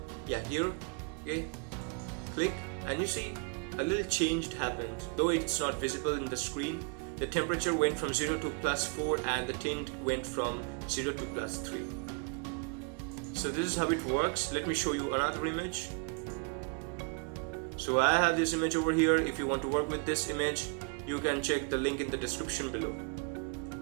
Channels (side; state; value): left; quieter; 35.0 dB